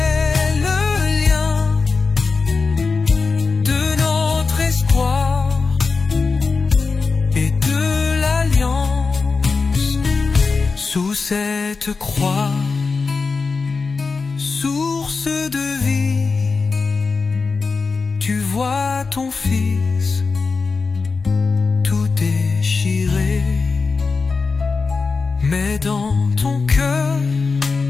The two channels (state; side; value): quieter; right; 4.5 dB